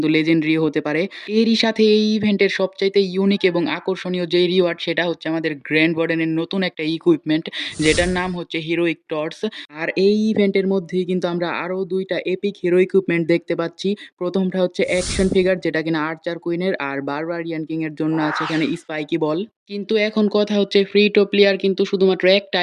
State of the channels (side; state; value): both; identical; correlation 1.00